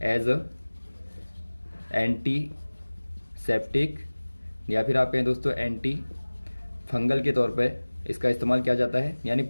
एज अ एंटीसेप्टिक या फिर आप कहें दोस्तों एंटी फंगल के तौर पे इसका इस्तेमाल किया जाता है, यानी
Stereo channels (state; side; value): inverted; both; correlation -1.00